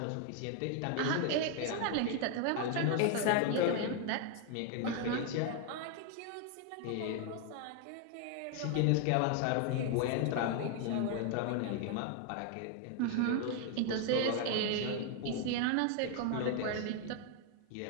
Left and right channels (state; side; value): different; both; correlation 0.01